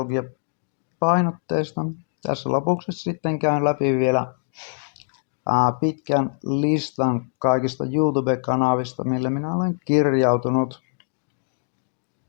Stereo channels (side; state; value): right; silent; 63 dB below the other